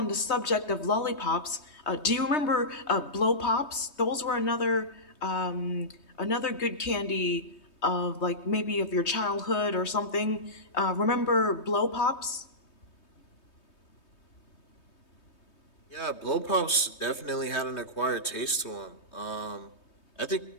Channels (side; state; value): right; late; 3.2 ms